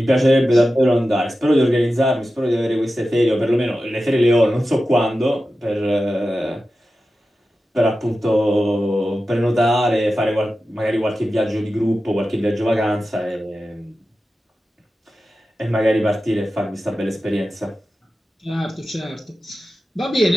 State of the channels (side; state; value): both; normal; correlation 0.93